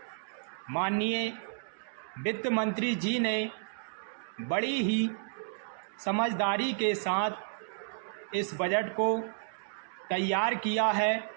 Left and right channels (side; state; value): left; silent; digital silence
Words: माननीय वित्त मंत्री जी ने बड़ी ही समझदारी के साथ इस बजट को तैयार किया है।